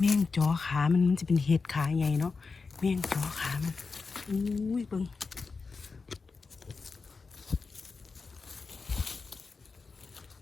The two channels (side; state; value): right; quieter; 4.5 dB